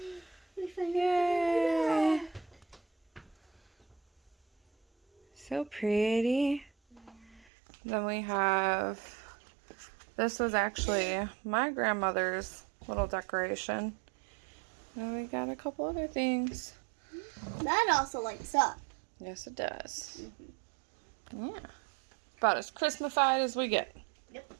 We finally Yay! So pretty. Then we have, this was actually my grandmother's little decoration. Then we got a couple other things. That also lights up. Yes, it does. Yeah. About as Christmasified as we get. Yep.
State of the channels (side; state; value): left; drops out; at 7.5 s